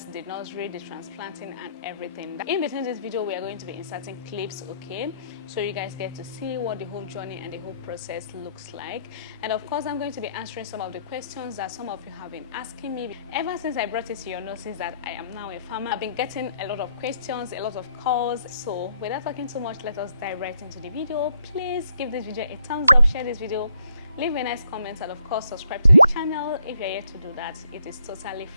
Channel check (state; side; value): inverted; both; correlation -0.73